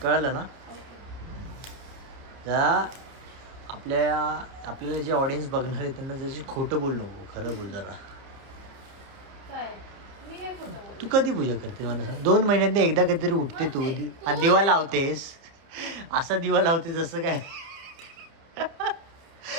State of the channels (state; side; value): late; left; 30 ms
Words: कळलं ना. जरा आपल्याला जे ऑडियन्स बघणार आहे त्यांना जशी खोटं बोल नको. खरं बोल जरा. तू कधी पूजा करते मला सांग. 2 महिन्यातनं एकदा कधीतरी उठते तू आणि दिवा लावतेस. असा दिवा लावते जसं काय